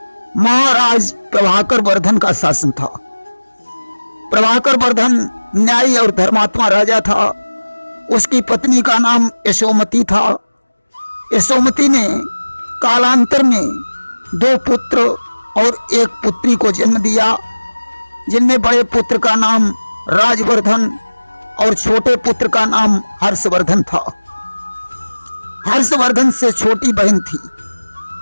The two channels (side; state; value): both; inverted; correlation -1.00